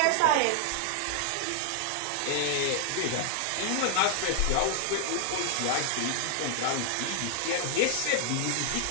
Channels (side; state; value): both; different; correlation 0.00